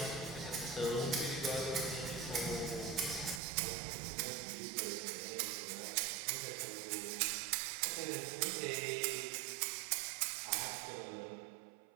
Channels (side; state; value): left; drops out; at 3.4 s